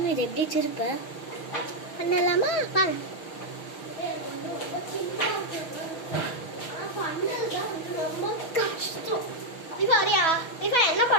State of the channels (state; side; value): late; right; 6.2 ms